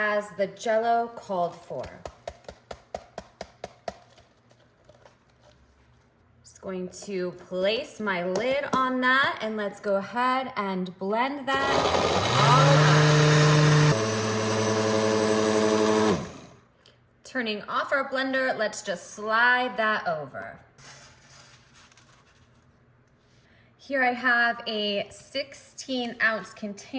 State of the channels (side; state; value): both; identical; correlation 1.00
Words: the Jello called for. Just going to place my lid on that and let's go ahead and blend that all up. Turning off our blender, let's just slide that over. Here I have a 16-ounce